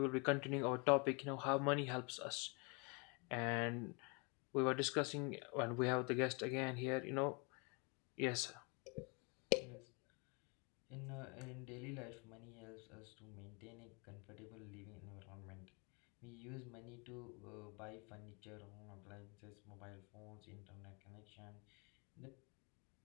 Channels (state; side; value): quieter; right; 32.1 dB